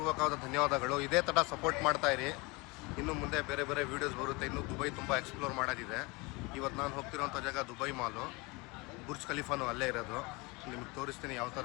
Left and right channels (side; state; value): right; quieter; 26.0 dB